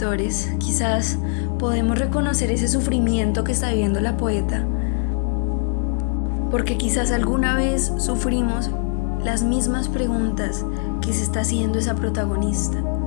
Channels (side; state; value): right; silent; 55 dB below the other